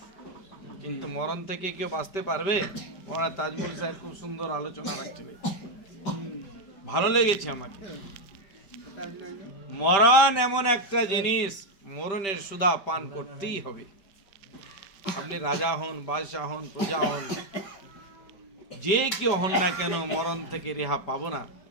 কিন্তু মরণ থেকে কেউ বাঁচতে পারবে? মৌলানা তাজমুল সাহেব খুব সুন্দর আলোচনা রাখছিলেন, ভালো লেগেছে আমাকে। মরণ এমন একটা জিনিস, মরণের সুধা পান করতেই হবে। আপনি রাজা হন, বাদশাহ হন, প্রজা হন, যে কেউ হন না কেন, মরণ থেকে রেহা পাবো না।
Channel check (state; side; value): late; right; 5.1 ms